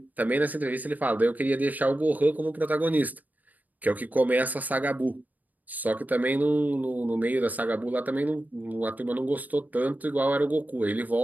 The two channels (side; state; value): left; late; 0.081 ms